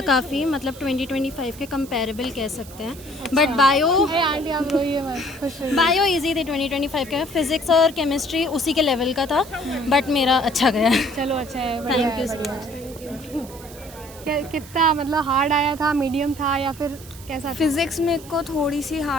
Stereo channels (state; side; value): noise; right; hiss, 19 dB below the sound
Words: काफ़ी, मतलब 2025 के कंपैरेबल कह सकते हैं। बट बायो इजी थे 2025 के। फिजिक्स और केमिस्ट्री उसी के लेवल का था बट मेरा अच्छा गया। चलो अच्छा है, थैंक यू सो मच। कितना मतलब हार्ड आया था, मीडियम था या फिर कैसा? फिजिक्स में को थोड़ी सी